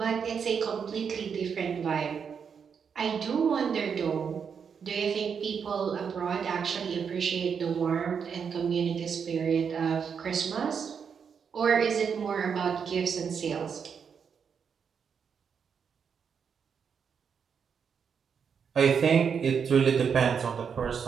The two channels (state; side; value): quieter; left; 6.7 dB